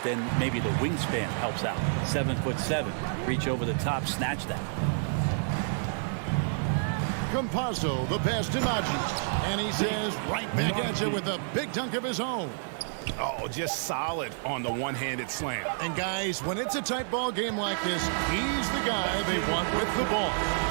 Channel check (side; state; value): left; silent; 58 dB below the other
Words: then maybe the wingspan helps out. 7'7". Reach over the top, snatch that. Campazzo, the pass to Najee. And he says right back at you with a big dunk of his own. Oh, just solid on the one-handed slam. And guys, when it's a tight ball game like this, he's the guy they want with the ball.